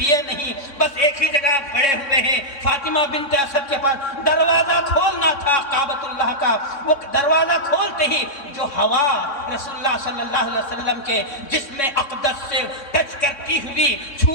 نہیں, بس ایک ہی جگہ پڑے ہوئے ہیں فاطمہ بنت اسد کے پاس. دروازہ کھولنا تھا کعبۃ اللہ کا, وہ دروازہ کھولتے ہی جو ہوا رسول اللہ صلی اللہ علیہ وسلم کے جسم اقدس سے ٹچ کرتی ہوئی,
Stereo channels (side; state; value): right; late; 3.6 ms